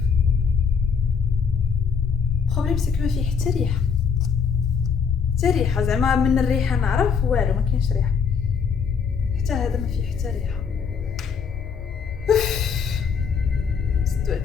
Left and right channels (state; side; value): quieter; right; 6.2 dB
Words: البروبليم سي كو ما فيه حتى ريحه، حتى ريحه زعما من الريحه نعرف والو، ما كاينش ريحه. حتى هذا ما فيه حتى ريحه.